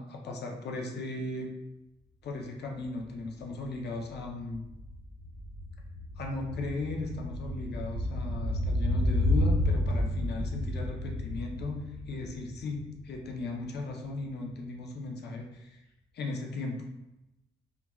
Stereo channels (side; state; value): both; normal; correlation 0.69